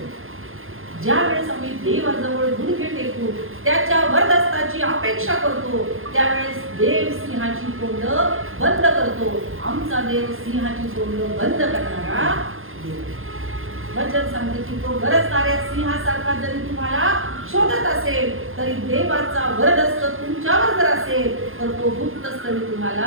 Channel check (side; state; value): left; late; 0.60 ms